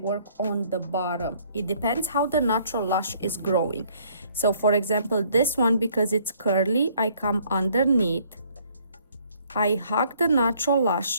on the bottom. It depends how the natural lash is growing. So for example, this one, because it's curly, I come underneath, I hug the natural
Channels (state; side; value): inverted; both; correlation -0.62